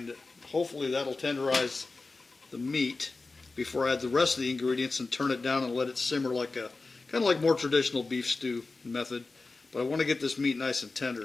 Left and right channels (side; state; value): right; quieter; 3.7 dB